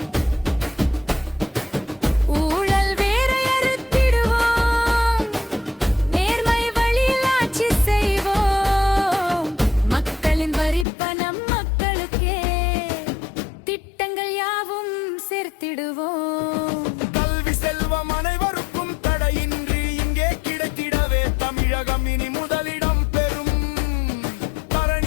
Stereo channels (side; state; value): right; drops out; at 10.9 s